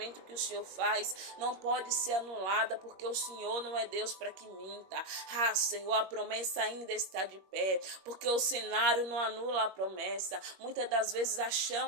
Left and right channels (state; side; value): late; left; 21 ms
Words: que o Senhor faz, não pode ser anulada, porque o Senhor não é Deus para que minta. Ah, Senhor, a promessa ainda está de pé, porque o cenário não anula a promessa. Muitas das vezes